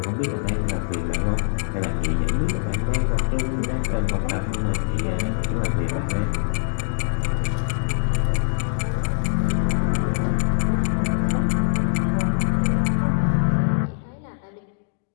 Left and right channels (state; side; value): silent; right; digital silence